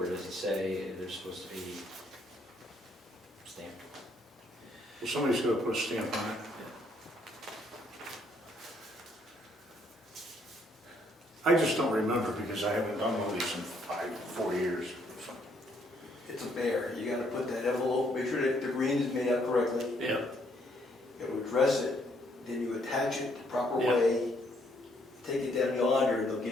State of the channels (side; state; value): both; normal; correlation 0.69